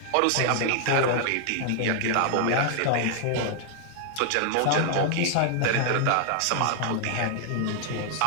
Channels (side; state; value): both; different; correlation 0.00